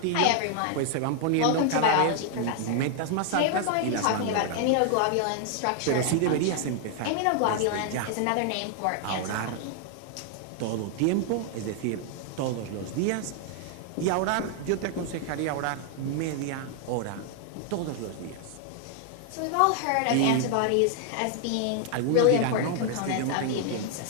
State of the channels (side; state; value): both; different; correlation 0.00